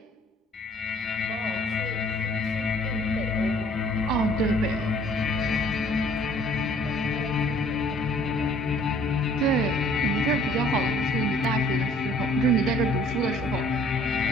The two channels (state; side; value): normal; both; correlation 0.56